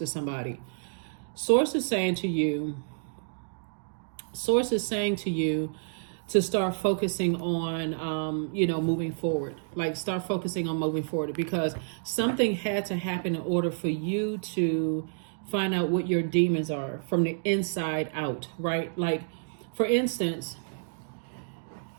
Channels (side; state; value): left; silent; digital silence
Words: somebody. Source is saying to you to start focusing on, moving forward. Like start focusing on moving forward, because something had to happen in order for you to find out what your demons are from the inside out, right? Like, for instance,